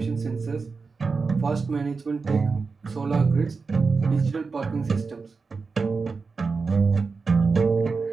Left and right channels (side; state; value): left; quieter; 4.6 dB